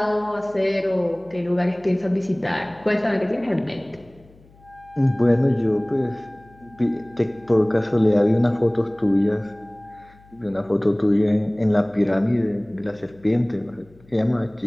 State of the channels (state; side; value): noise; left; hum, 27 dB below the sound